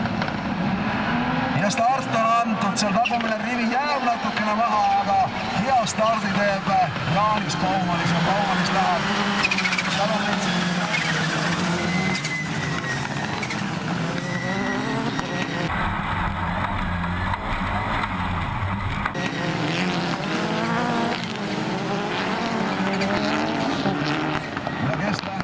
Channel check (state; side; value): identical; both; correlation 1.00